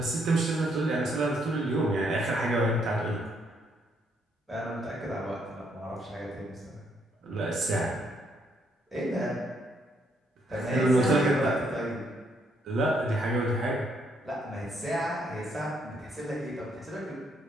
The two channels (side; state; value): both; normal; correlation 0.72